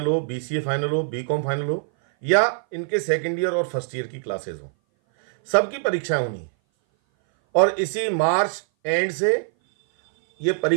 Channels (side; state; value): left; silent; 59 dB below the other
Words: हो, BCA फाइनल हो, BCom फाइनल हो या इनके सेकेंड ईयर और फर्स्ट ईयर की क्लासेस हो, सबकी परीक्षाएं होनी है। और इसी मार्च एंड से ये